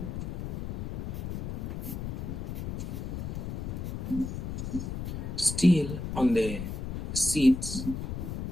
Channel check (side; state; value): left; noise; rumble, 4 dB below the sound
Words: Still on the seats,